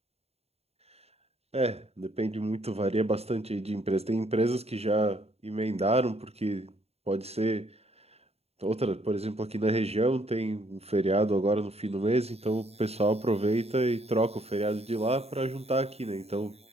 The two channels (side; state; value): left; late; 0.30 ms